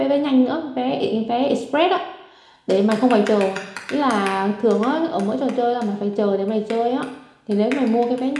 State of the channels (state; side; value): identical; both; correlation 1.00